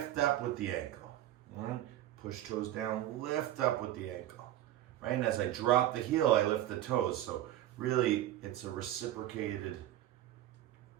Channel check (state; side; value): quieter; left; 13.2 dB